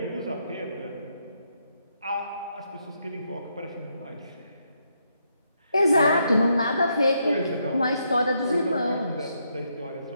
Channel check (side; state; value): both; inverted; correlation -0.78